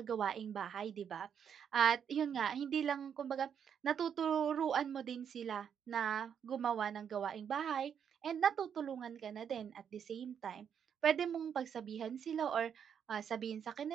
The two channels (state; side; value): quieter; left; 8.0 dB